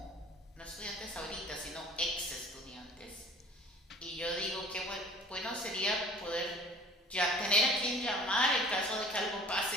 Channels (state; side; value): normal; both; correlation 0.48